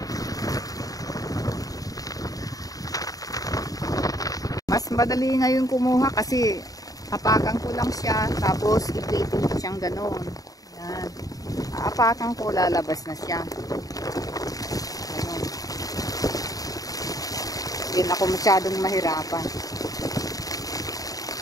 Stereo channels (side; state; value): right; late; 0.17 ms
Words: Mas madali ngayon kumuha kasi hapakan ko lang siya tapos ipitin ko siyang gano'n. Yan. Hapakan ko, lalabas na siya. Ganun. Hindi na ako masyadong mahirapan.